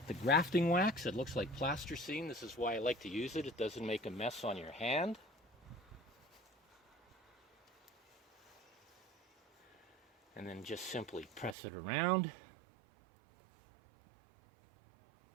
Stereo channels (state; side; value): drops out; left; at 11.6 s